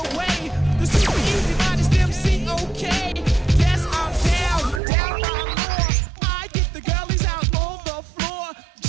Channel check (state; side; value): drops out; left; at 4.8 s